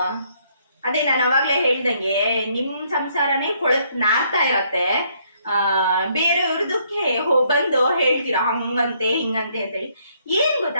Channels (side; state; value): both; inverted; correlation -0.69